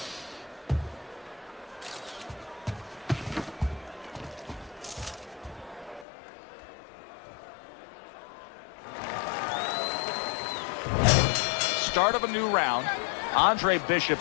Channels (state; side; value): drops out; right; at 6.1 s